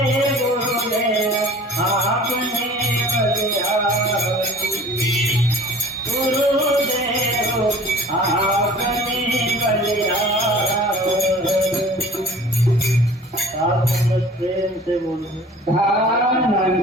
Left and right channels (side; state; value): both; normal; correlation 0.46